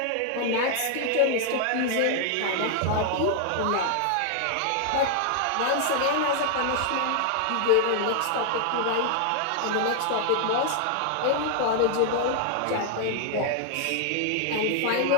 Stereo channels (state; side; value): different; both; correlation 0.00